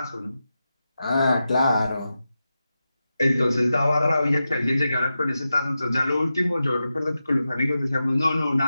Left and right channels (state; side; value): inverted; both; correlation -0.91